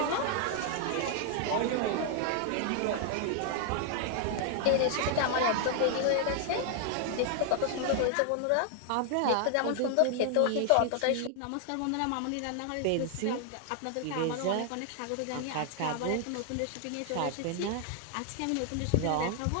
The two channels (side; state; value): both; different; correlation 0.00